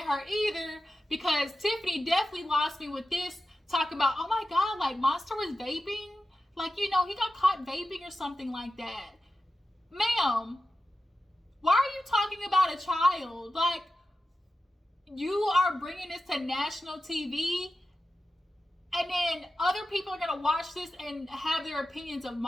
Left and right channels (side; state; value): both; normal; correlation 0.92